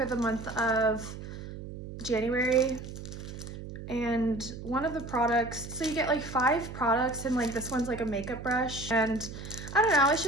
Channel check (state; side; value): noise; right; hum, 10 dB below the sound